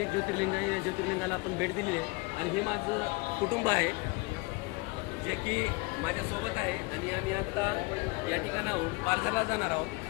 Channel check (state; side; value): quieter; right; 26.1 dB